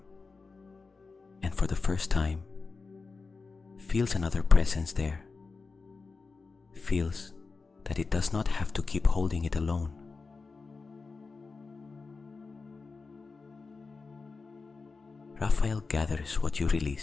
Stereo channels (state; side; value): quieter; right; 4.3 dB